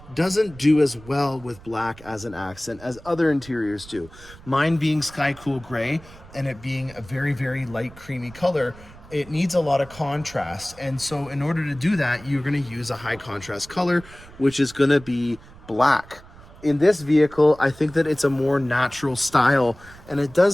doesn't do as well with black as an accent as other interiors do. Mine being sky cool gray and it being a very, very light creamy color, it needs a lot of contrast. And so in order to do that, you're gonna use a high contrast color, which is gonna be black. In this vehicle, I think that it's a more natural style and it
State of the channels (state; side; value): noise; right; rumble, 20 dB below the sound